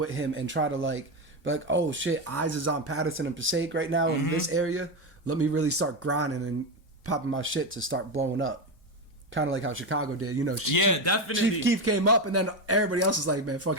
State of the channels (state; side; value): normal; both; correlation 0.13